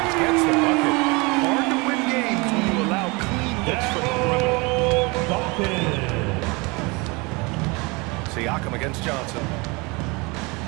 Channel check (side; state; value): left; quieter; 26.9 dB